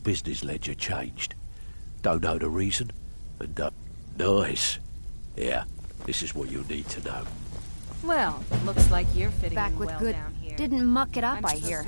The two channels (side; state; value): both; inverted; correlation -1.00